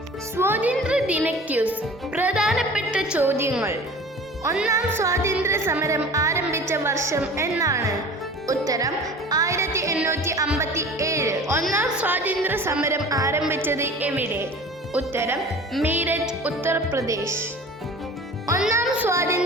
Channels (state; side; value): normal; both; correlation 0.41